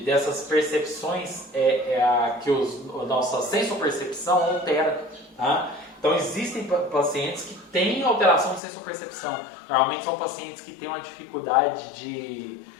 dessas percepções que a nossa sensopercepção altera. Tá? Então existem pacientes que têm alteração de sensopercepção. Normalmente são pacientes que têm uma dificuldade de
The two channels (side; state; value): right; drops out; at 8.6 s